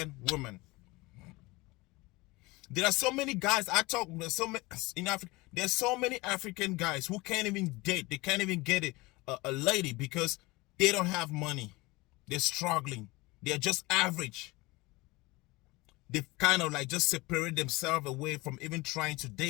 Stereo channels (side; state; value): right; quieter; 22.5 dB